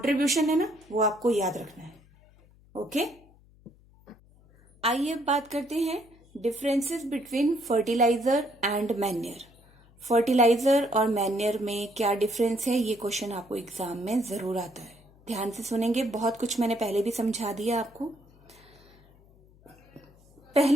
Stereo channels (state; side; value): noise; left; hum, 28 dB below the sound